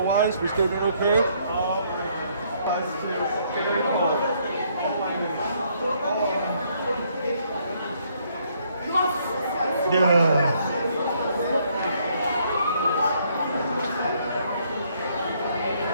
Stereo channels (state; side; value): inverted; both; correlation -0.68